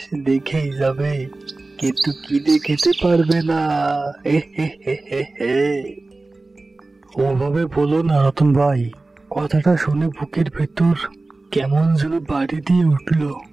দেখেই যাবে, কিন্তু কিনে খেতে পারবে না। ওভাবে বলো না রতন ভাই, কথাটা শুনে বুকের ভেতর কেমন যেন বাড়ি দিয়ে উঠল।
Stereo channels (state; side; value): quieter; left; 3.2 dB